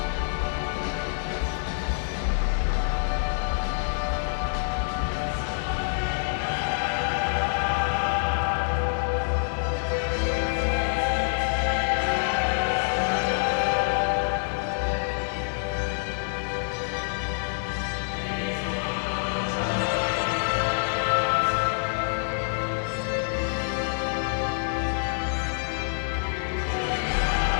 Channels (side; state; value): right; silent; digital silence